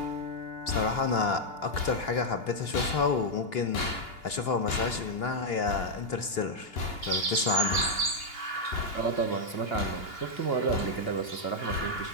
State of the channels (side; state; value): right; late; 2.8 ms